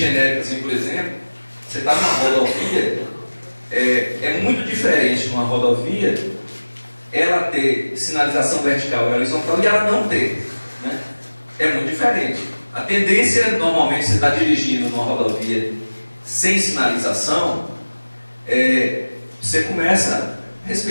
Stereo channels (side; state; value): both; inverted; correlation -1.00